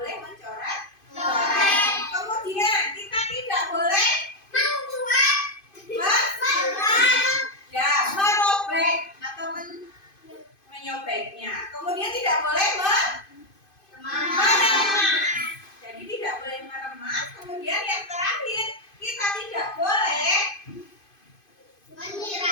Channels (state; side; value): late; right; 2.5 ms